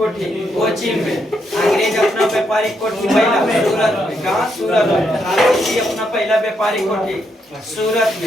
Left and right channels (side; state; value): both; normal; correlation 0.78